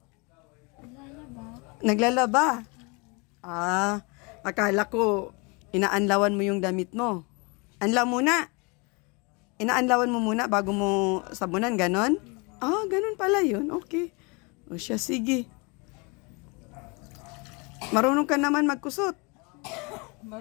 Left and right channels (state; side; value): quieter; right; 29.8 dB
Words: Naglalaba. Akala ko inaanlawan mo yung damit mo. Anlaw muna. Inaanlawan mo muna bago mo sabunan, ganon? Ganon pala yun. Okay. O siya, sige. Marunong ka naman magkusot.